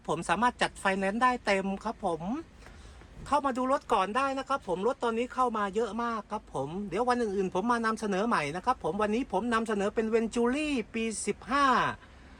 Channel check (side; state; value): both; identical; correlation 1.00